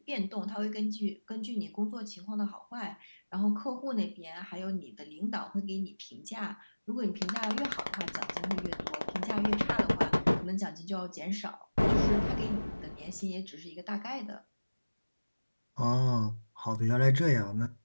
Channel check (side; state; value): both; inverted; correlation -1.00